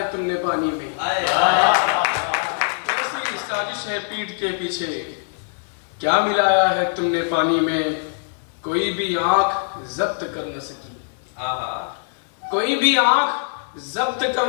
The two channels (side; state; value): right; silent; digital silence